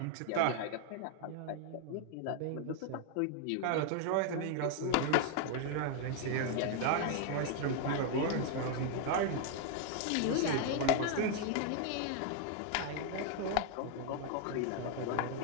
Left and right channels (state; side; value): different; both; correlation 0.00